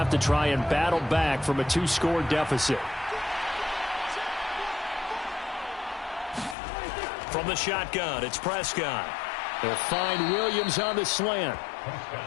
to try and battle back from a 2-score deficit. From the shotgun, it's Prescott. They'll find Williams on the slant.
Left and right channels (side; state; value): right; drops out; at 6.6 s